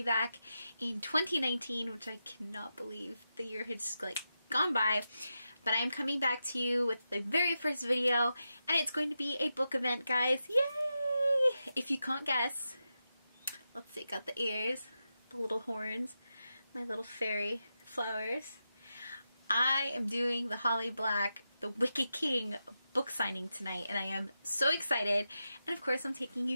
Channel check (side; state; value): both; inverted; correlation -0.89